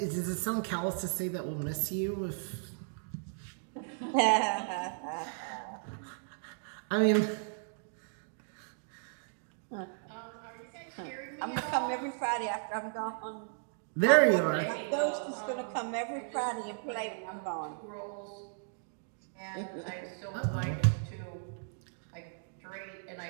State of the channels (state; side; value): silent; left; digital silence